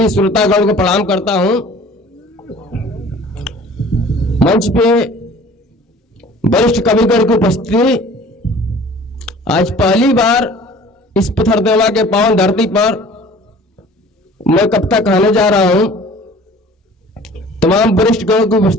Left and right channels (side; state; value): both; normal; correlation 0.48